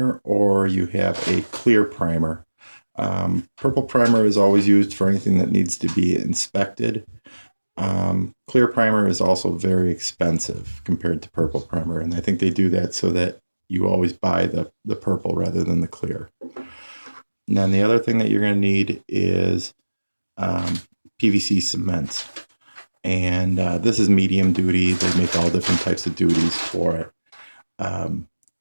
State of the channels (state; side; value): inverted; both; correlation -1.00